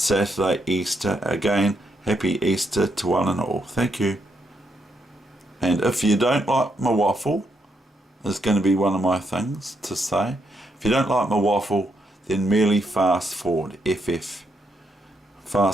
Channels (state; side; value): normal; both; correlation 0.78